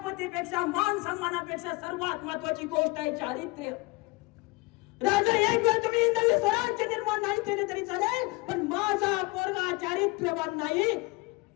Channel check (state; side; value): quieter; right; 24.6 dB